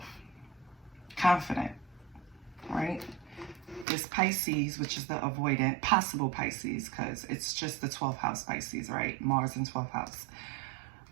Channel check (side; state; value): left; drops out; at 3.9 s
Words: confident, right? This Pisces, which is the avoidant, possible Pisces, because it's just the 12th house Pisces, right? Mars in 12th house.